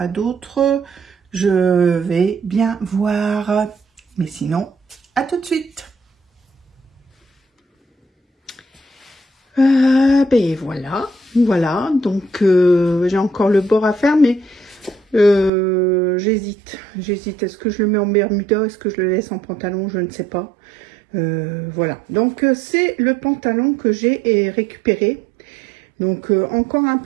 d'autres. Je vais bien voir. Mais sinon, à tout de suite. Ben voilà, voilà. Donc j'ai encore le bord à faire, mais j'hésite. Est-ce que je le mets en bermuda? Est-ce que je le laisse en pantalon? Je ne sais pas. Voilà. Donc c'est le pantalon que j'ai récupéré. Donc encore un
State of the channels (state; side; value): drops out; left; at 15.5 s